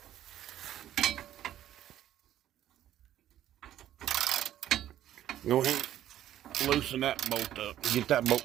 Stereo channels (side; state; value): left; quieter; 12.1 dB